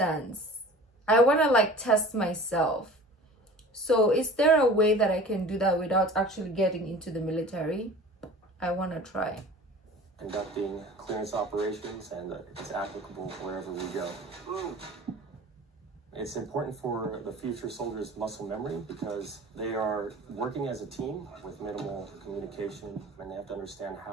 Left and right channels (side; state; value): both; normal; correlation 0.42